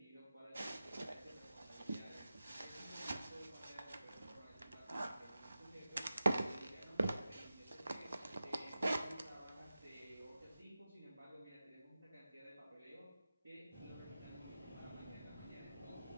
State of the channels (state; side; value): inverted; both; correlation -0.93